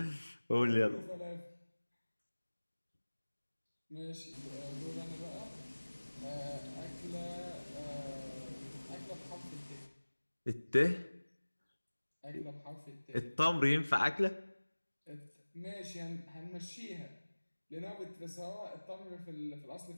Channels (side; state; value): both; inverted; correlation -1.00